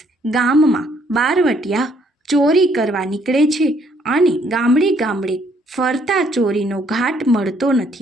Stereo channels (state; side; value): normal; both; correlation 0.67